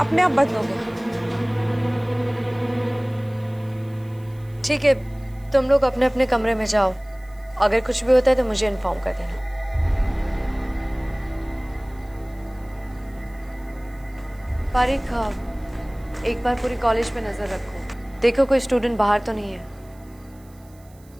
आप बंद हो गया। ठीक है, तुम लोग अपने अपने कमरे में जाओ। अगर कुछ भी होता है तो मुझे इन्फॉर्म कर देना। पारिक, एक बार पूरी कॉलेज पे नजर रखो, देखो कोई स्टूडेंट बाहर तो नहीं है।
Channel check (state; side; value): noise; right; hiss, 29 dB below the sound